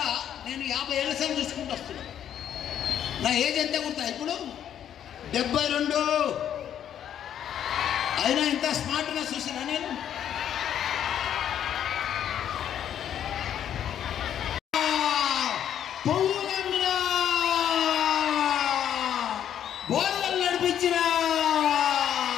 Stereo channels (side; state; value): right; quieter; 9.9 dB